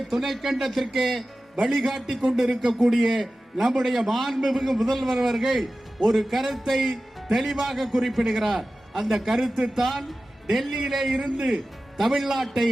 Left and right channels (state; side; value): normal; both; correlation 0.95